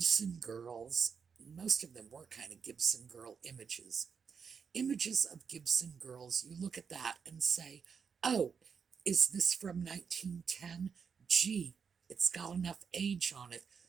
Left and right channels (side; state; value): left; quieter; 6.3 dB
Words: girls. Most of them were kind of Gibson girl images. Images of Gibson girls, you look at that and say, oh, is this from 1910? Gee, it's got enough age on it,